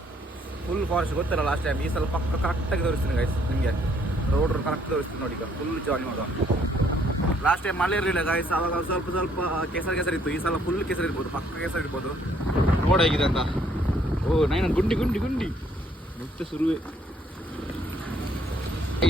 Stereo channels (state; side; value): normal; both; correlation 0.66